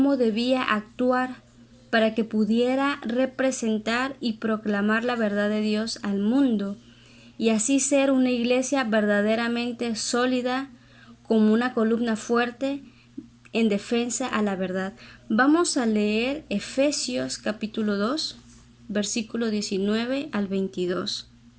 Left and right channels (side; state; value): both; identical; correlation 1.00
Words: debía actuar para que pudiera representar y proclamar la verdad de Dios al mundo y así ser una iglesia verdaderamente sólida, como una columna fuerte en defensa a la verdad. Vamos a leer Efesios capítulo 2, versículo 19 al 22.